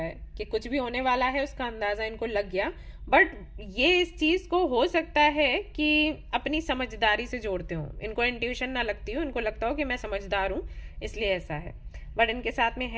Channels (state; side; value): identical; both; correlation 1.00